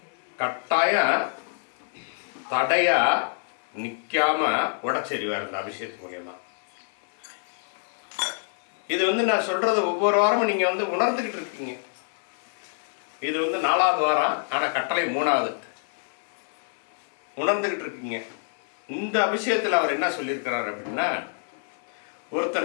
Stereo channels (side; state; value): right; silent; digital silence